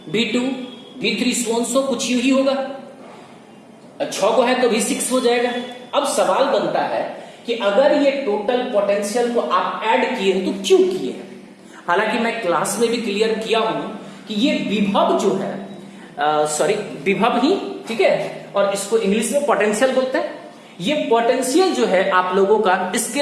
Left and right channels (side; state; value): both; identical; correlation 1.00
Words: V2 V3 सो कुछ यूं ही होगा, 6 को है तो V6 हो जाएगा। अब सवाल बनता है कि अगर ये टोटल पोटेंशियल को आप ऐड किए तो क्यों किए? हालांकि मैं क्लास में भी क्लियर किया हूं कि ये विभव जो है, विभव ही, ठीक है, और इसको इंग्लिश में पोटेंशियल बोलते हैं। ये पोटेंशियल जो है आप लोगों का